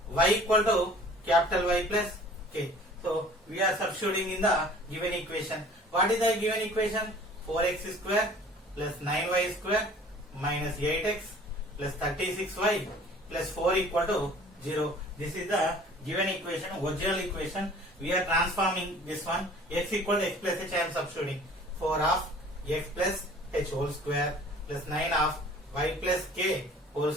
y equal to capital Y plus k. So we are substituting in the given equation. What is the given equation? 4x square plus 9y square minus 8x plus 36y plus 4 equal to 0. This is the given equation, original equation. We are transforming this one. X equal to x plus h, I am substituting. 4 of x plus h whole square plus 9 of y plus k whole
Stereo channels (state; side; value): normal; both; correlation 0.49